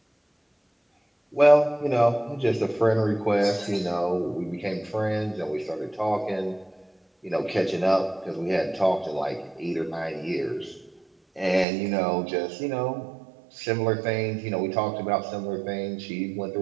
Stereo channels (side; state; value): left; drops out; at 11.7 s